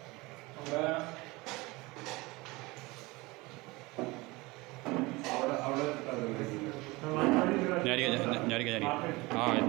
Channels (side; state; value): left; quieter; 22.9 dB